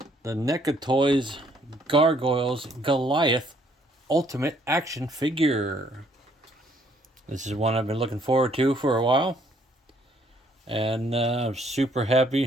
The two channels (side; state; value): both; normal; correlation 0.65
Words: the NECA Toys Gargoyles Goliath Ultimate Action Figure. This is one I've been looking forward to for a while. And I'm super